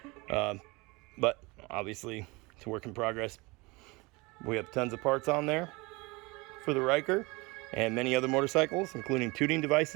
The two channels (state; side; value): quieter; left; 25.0 dB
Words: but obviously it's a work in progress. We have tons of parts on there for the Riker and many other motorcycles, including tuning